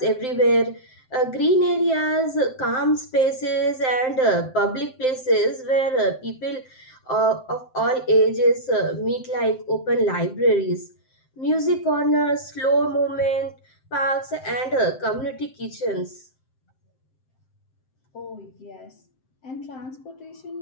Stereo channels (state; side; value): late; right; 7.7 ms